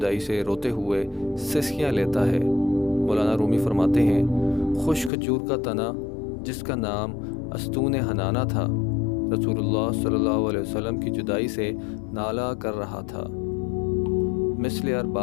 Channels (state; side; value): drops out; right; at 5.1 s